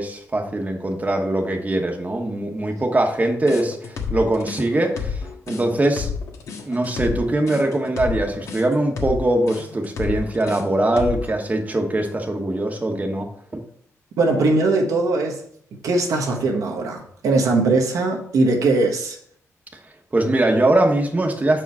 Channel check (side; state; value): both; normal; correlation 0.82